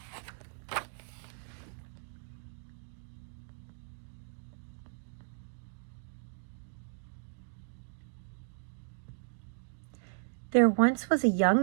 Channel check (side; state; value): left; silent; digital silence